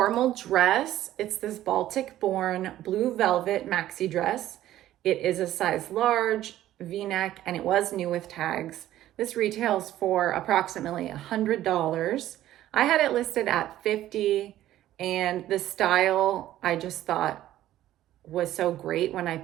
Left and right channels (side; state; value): left; quieter; 13.5 dB